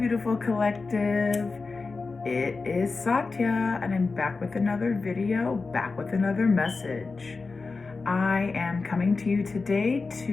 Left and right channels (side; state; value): right; quieter; 4.1 dB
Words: collective. It is Satya, and I'm back with another video, back with another message. I am coming to you today